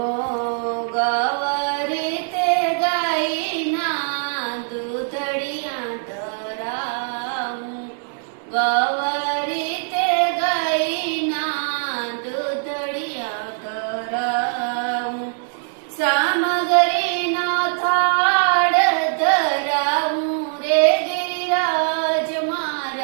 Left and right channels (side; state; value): left; silent; 64 dB below the other